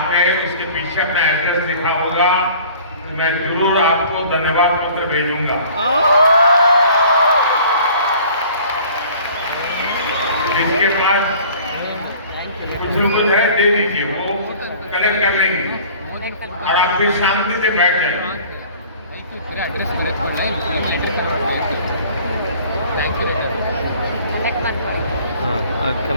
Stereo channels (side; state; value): both; inverted; correlation -0.49